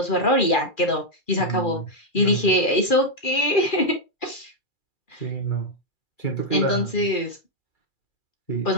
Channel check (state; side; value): late; right; 2.4 ms